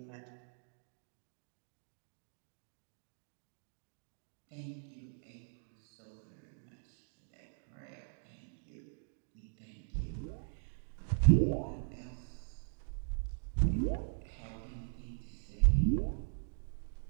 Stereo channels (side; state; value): left; silent; digital silence